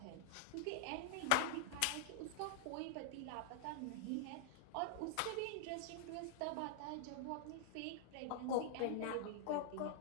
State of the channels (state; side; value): different; both; correlation -0.01